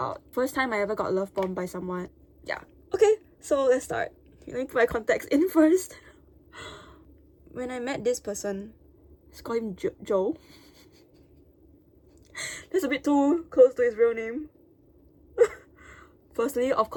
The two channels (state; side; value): identical; both; correlation 1.00